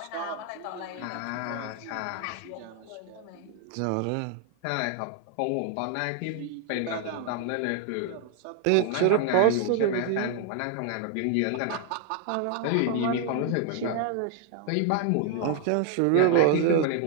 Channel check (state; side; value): different; both; correlation 0.00